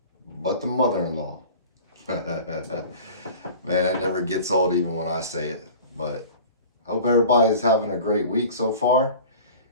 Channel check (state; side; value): inverted; both; correlation -0.41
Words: but the mother-in-law. Man, that never gets old even when I say it. But hope everybody's having a great week so far.